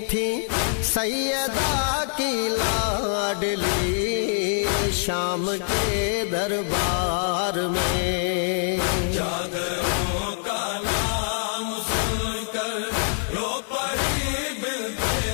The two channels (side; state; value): right; silent; digital silence